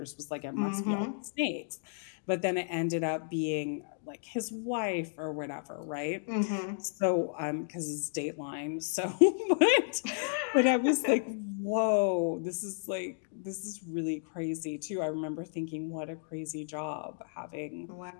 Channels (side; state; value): right; silent; digital silence